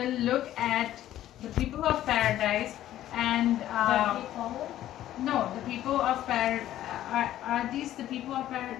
look at the people of paradise and That they follow? no, the people of paradise are these the people of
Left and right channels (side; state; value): right; quieter; 13.0 dB